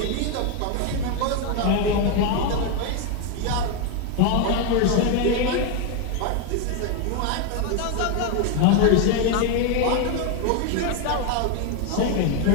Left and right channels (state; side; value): different; both; correlation 0.01